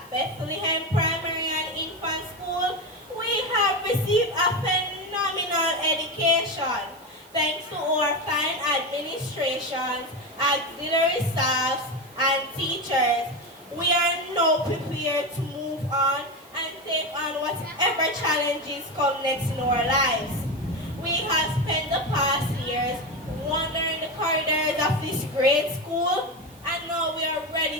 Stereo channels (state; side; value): noise; right; hiss, 26 dB below the sound